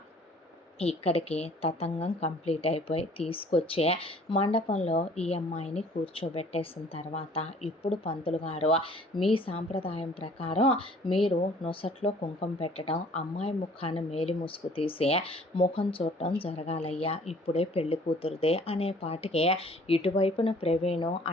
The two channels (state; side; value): normal; both; correlation 0.54